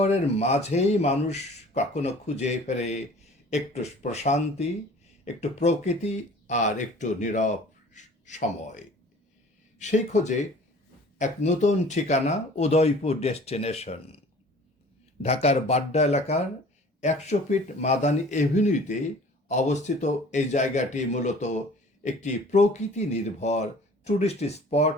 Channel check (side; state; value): both; normal; correlation 0.48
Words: মাঝেই মানুষ কখনো খুঁজে ফেরে একটু প্রশান্তি, একটু প্রকৃতি আর একটু নীরব সময়। সেই খোঁজে এক নতুন ঠিকানা, উদয়পুর ডেস্টিনেশন। ঢাকার বাড্ডা এলাকার 100 ফিট মাদানী এভিনিউতে অবস্থিত এই জায়গাটি মূলত একটি প্রকৃতি নির্ভর ট্যুরিস্ট স্পট